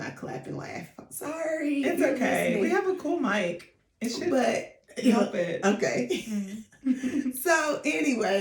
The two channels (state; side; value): identical; both; correlation 1.00